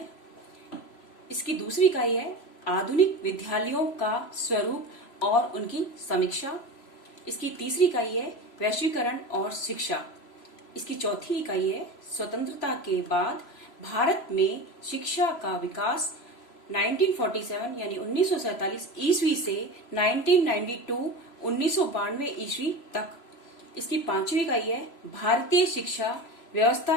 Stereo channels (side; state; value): right; late; 3.0 ms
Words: इसकी दूसरी इकाई है आधुनिक विद्यालयों का स्वरूप और उनकी समीक्षा। इसकी तीसरी इकाई है वैश्वीकरण और शिक्षा। इसकी चौथी इकाई है स्वतंत्रता के बाद भारत में शिक्षा का विकास 1947 यानी 1947 ईस्वी से 1992 ईस्वी तक। इसकी पांचवी इकाई है भारतीय शिक्षा व्यवस्था